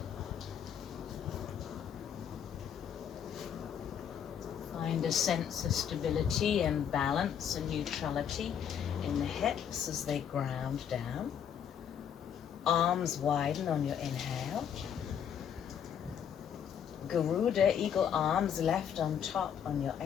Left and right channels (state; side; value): quieter; right; 8.5 dB